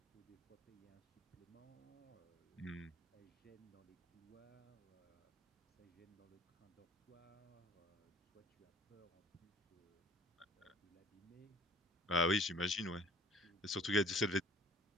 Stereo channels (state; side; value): normal; both; correlation 0.51